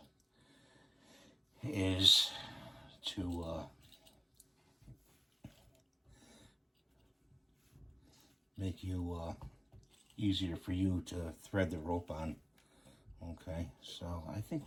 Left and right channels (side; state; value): both; identical; correlation 1.00